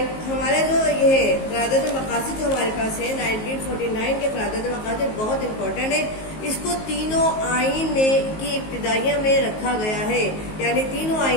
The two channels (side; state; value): right; late; 19 ms